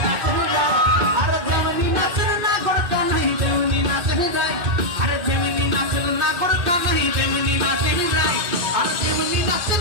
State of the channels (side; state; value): left; late; 2.6 ms